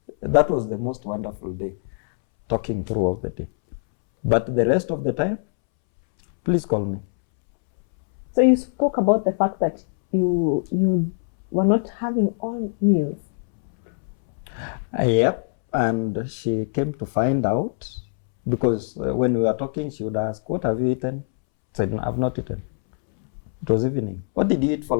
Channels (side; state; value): right; silent; 63 dB below the other